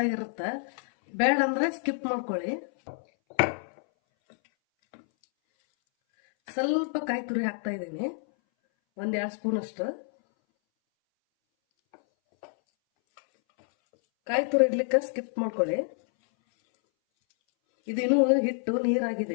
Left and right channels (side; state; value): right; silent; 59 dB below the other